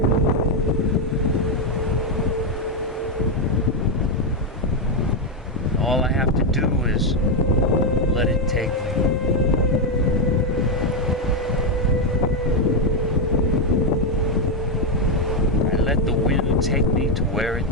All I have to do is let it take me. I let the wind take me to where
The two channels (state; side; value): normal; both; correlation 0.04